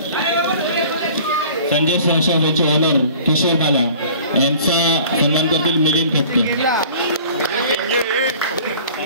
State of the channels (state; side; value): inverted; both; correlation -0.47